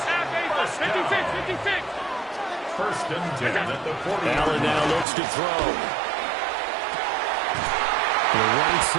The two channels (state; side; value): drops out; left; at 5.1 s